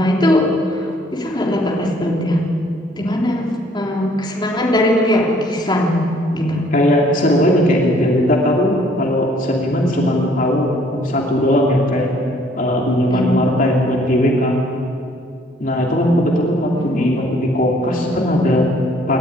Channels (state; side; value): normal; both; correlation 0.61